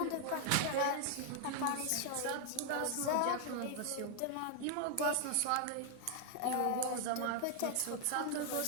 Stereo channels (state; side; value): different; both; correlation 0.00